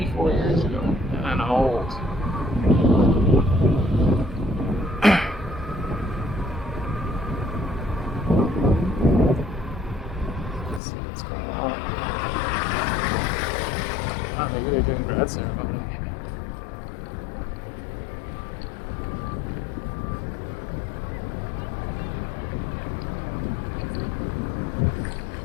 years ago, and I'm old. Let's see what's going on. Oh, maybe they're doing grad ceremony.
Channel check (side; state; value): right; drops out; at 10.8 s